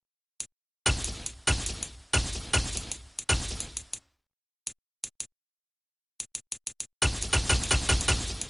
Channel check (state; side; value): identical; both; correlation 1.00